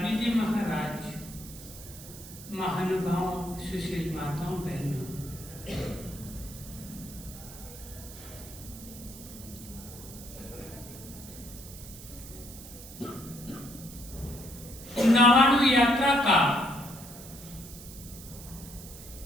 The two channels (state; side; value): noise; right; hiss, 15 dB below the sound